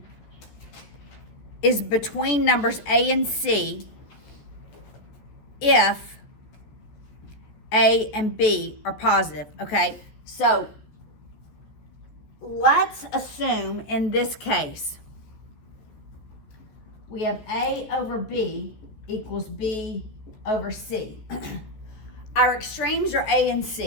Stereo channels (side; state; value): right; late; 14 ms